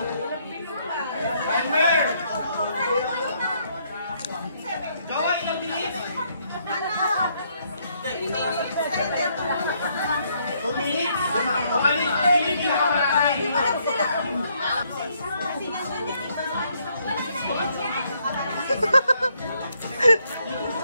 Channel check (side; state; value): both; inverted; correlation -0.71